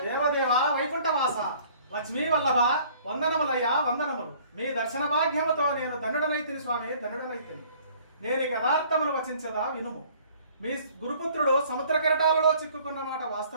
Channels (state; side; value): inverted; both; correlation -0.55